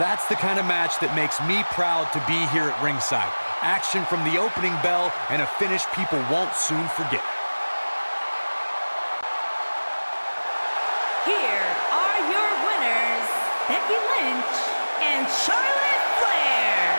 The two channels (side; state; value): both; inverted; correlation -1.00